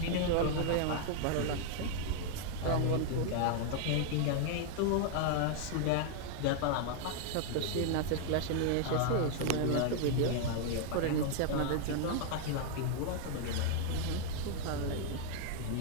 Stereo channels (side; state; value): both; different; correlation 0.00